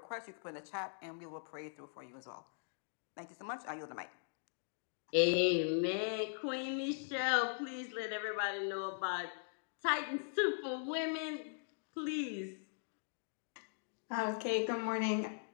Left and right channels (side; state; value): right; silent; digital silence